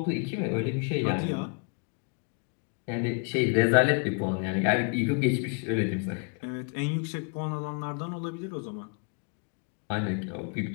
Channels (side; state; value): right; quieter; 40.0 dB